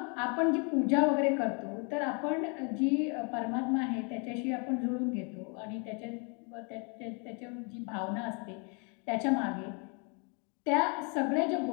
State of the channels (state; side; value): quieter; right; 35.8 dB